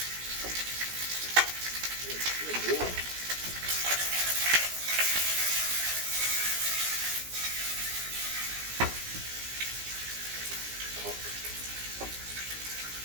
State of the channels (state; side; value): late; left; 17 ms